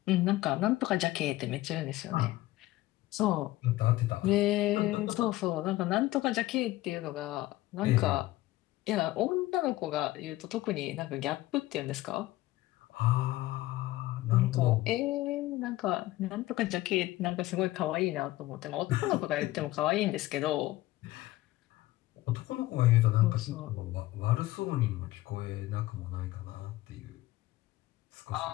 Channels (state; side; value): quieter; right; 17.2 dB